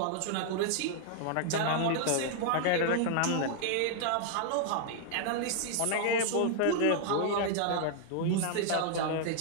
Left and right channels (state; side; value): different; both; correlation 0.00